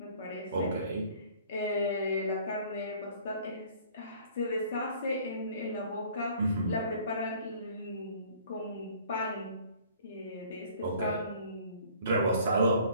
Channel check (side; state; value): both; inverted; correlation -0.53